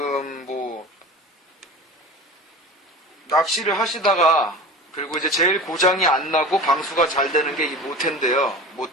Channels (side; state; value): both; normal; correlation 0.35